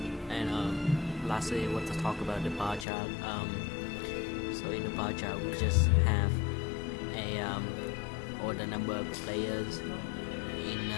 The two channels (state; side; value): drops out; right; at 2.9 s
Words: And lastly, I want to talk about the bar chart. So in the bar chart, we just have all the number of players